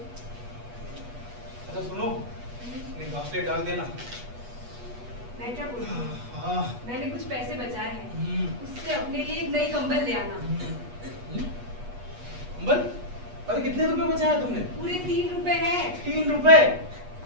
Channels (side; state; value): left; late; 8.3 ms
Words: अच्छा सुनो, ये घासले डाल देना। मैं क्या बोलूं? हाँ। मैंने कुछ पैसे बचाए हैं, उससे अपने लिए एक नई कंबल ले आना। कंबल? अरे कितने रुपए बचाया तुमने? पूरे 3 रुपए हैं। 3 रुपए?